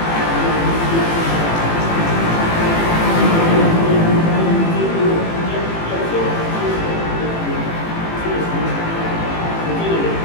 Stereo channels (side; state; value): right; late; 18 ms